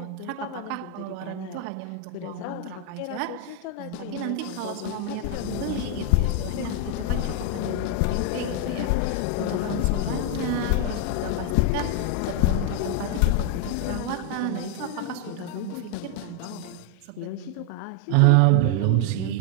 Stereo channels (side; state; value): both; different; correlation 0.00